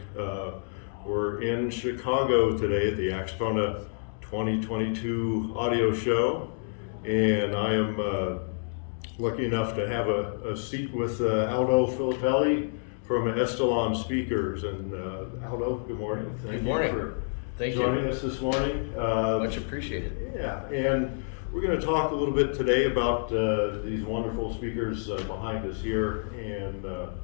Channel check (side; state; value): right; silent; digital silence